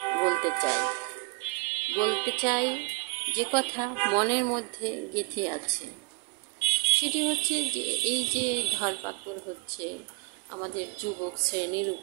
বলতে চাই যে কথা মনের মধ্যে গেঁথে আছে। সেটি হচ্ছে যে এই যে ধরপাকড় হচ্ছে আমাদের যুবক শ্রেণীর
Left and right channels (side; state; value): left; quieter; 30.8 dB